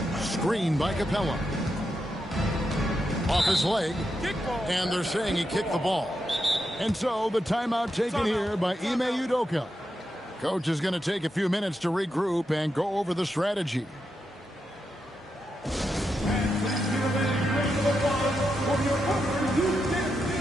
Screen by Capella. Off his leg. And they're saying he kicked the ball. And so the timeout taken here by Ime Udoka. Coach is going to take a few minutes to regroup and go over the strategy.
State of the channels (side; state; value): both; normal; correlation 0.85